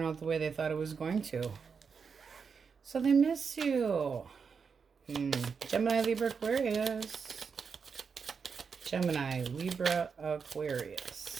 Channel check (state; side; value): quieter; left; 5.8 dB